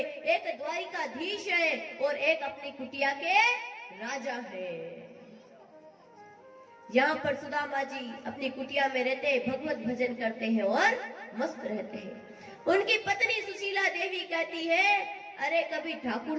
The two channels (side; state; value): both; identical; correlation 1.00